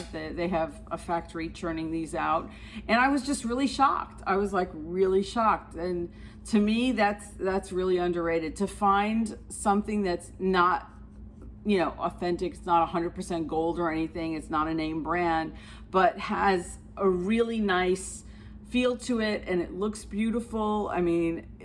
They have a factory churning these out. And I was just really shocked. I was like really shocked. And to me, that's really underrated. To find something that's not, authentic, it's not 100% gold or anything, it's not a name brand, but has a really nice feel to it and it looks beautiful. I mean,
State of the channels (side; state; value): both; identical; correlation 1.00